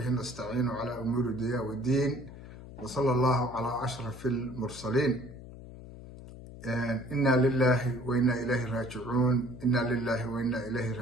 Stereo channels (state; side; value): noise; left; hum, 15 dB below the sound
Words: نستعين على أمور الدنيا والدين وصلى الله على أشرف المرسلين. إنا لله وإنا إليه راجعون. إنا لله وإنا